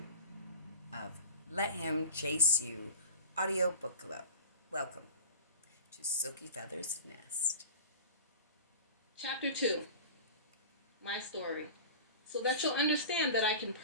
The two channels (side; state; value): both; inverted; correlation -0.34